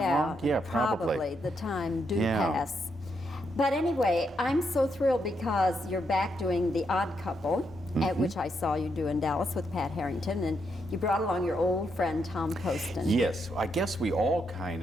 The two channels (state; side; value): normal; both; correlation 0.79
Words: long? Yeah, probably. The time do pass. But anyway, I'm so thrilled because you're back doing The Odd Couple, at which I saw you do in Dallas with Pat Harrington, and you brought along your old friend Tom Poston. Yes, I guess we all kind